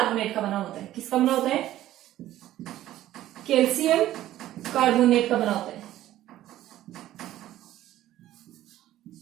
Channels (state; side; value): quieter; left; 13.8 dB